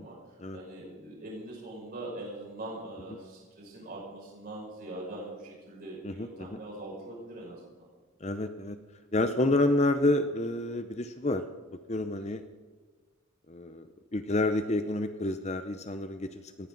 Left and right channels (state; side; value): normal; both; correlation 0.51